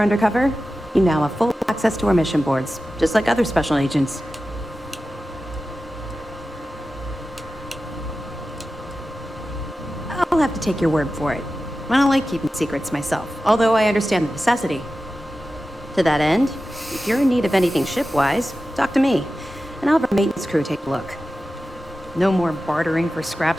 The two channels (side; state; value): both; normal; correlation 0.94